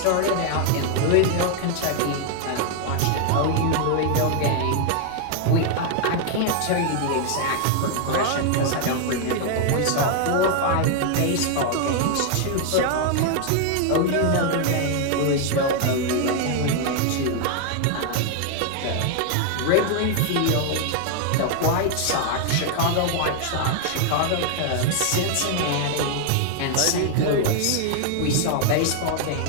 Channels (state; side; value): different; both; correlation 0.00